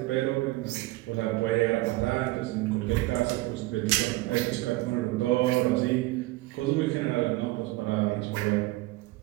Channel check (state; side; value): quieter; left; 19.9 dB